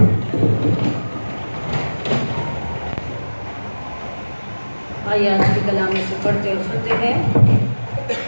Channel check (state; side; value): inverted; both; correlation -1.00